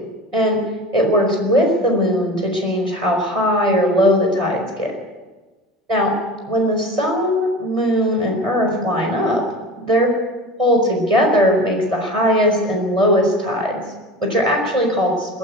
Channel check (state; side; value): normal; both; correlation 0.34